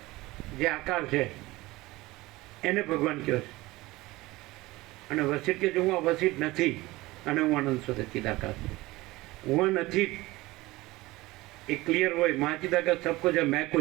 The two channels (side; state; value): left; quieter; 19.9 dB